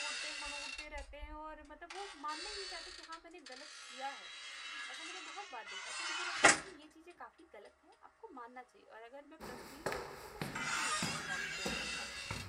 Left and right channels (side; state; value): both; identical; correlation 1.00